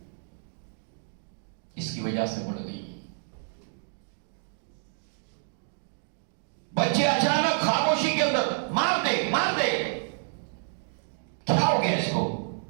اس کی وجہ سے بڑھ گئی. بچے اچانک خاموشی کے اندر مار دے، کیا ہو گیا اس کو؟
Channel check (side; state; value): left; silent; digital silence